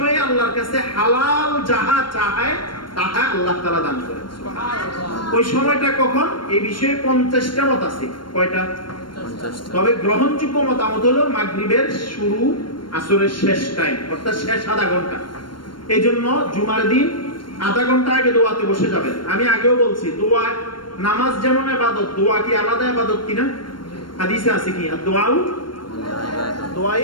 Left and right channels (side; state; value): right; late; 0.72 ms